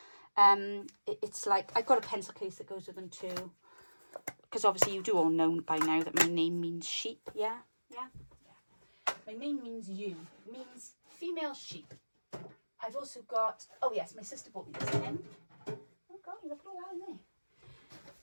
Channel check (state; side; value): inverted; both; correlation -1.00